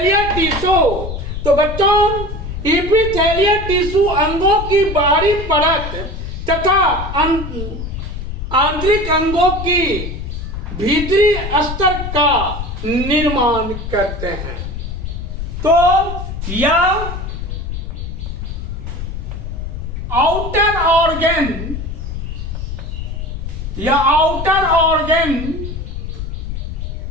टिश्यू, तो बच्चों इपिथेलियल टिश्यू अंगों की बाहरी परत तथा आंतरिक अंगों की भीतरी स्तर का निर्माण करते हैं। तो यह आउटर ऑर्गन या आउटर ऑर्गन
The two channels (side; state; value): left; noise; rumble, 6 dB below the sound